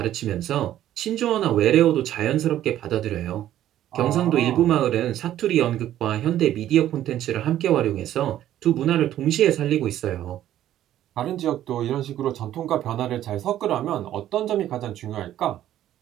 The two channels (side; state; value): left; quieter; 12.3 dB